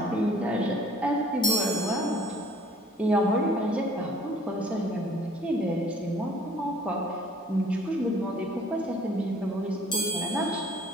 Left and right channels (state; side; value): normal; both; correlation 0.55